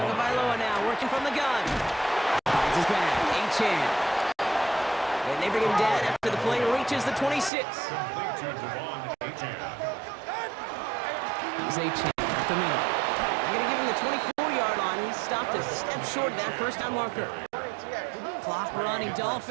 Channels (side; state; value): left; drops out; at 7.5 s